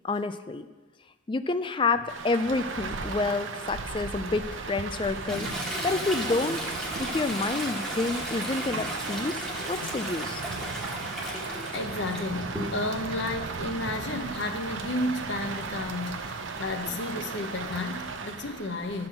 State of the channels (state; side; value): normal; both; correlation 0.34